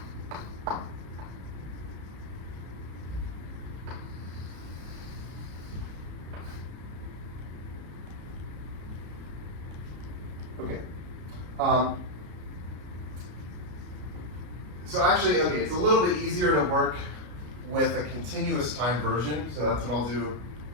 Okay. So actually, okay, it's a little bit easier to work with a continuous time version, so that's what I'll do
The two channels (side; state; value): left; late; 33 ms